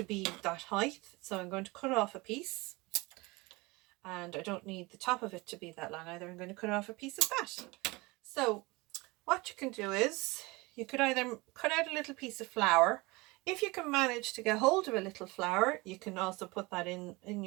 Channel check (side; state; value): left; quieter; 23.9 dB